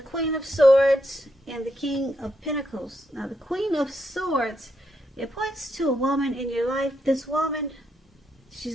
of Swords and the King of Pentacles. Now, the Queen of Swords, it points to a woman in your life. This woman,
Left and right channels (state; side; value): normal; both; correlation 0.79